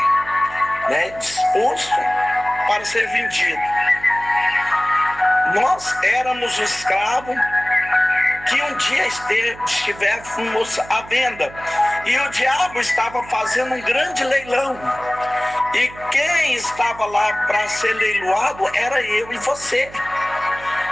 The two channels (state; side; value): noise; right; hum, 18 dB below the sound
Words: disposto para ser vendido. Nós éramos o escravo que um dia estivéssemos à venda. E o diabo estava fazendo um grande leilão. E quem estava lá para ser leiloado era eu e você.